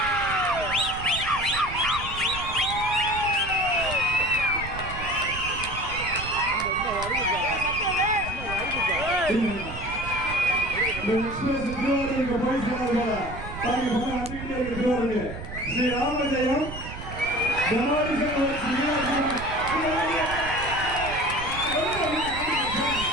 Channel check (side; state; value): right; noise; rumble, 10 dB below the sound